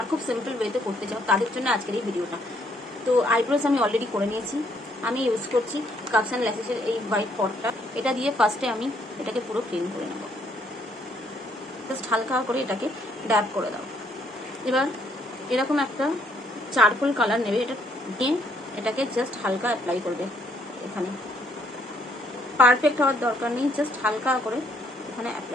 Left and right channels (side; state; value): both; normal; correlation 0.68